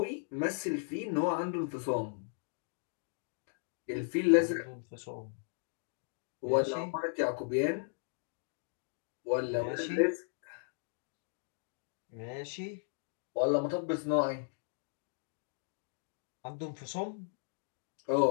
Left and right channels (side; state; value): right; silent; digital silence